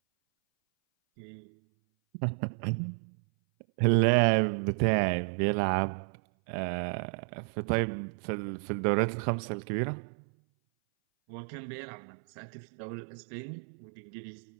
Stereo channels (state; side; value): silent; left; 57 dB below the other